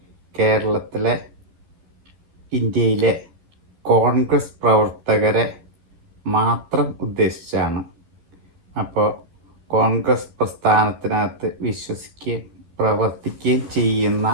കേരളത്തിലെ ഇന്ത്യയിലെ കോൺഗ്രസ് പ്രവർത്തകരെ മാത്രം ഉദ്ദേശിച്ചാണ്. അപ്പോൾ കോൺഗ്രസ് പ്രസ്ഥാനത്തിനകത്ത് വിശ്വസിക്കുകയും പ്രവർത്തിക്കുകയും ചെയ്യുന്ന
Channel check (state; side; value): late; left; 13 ms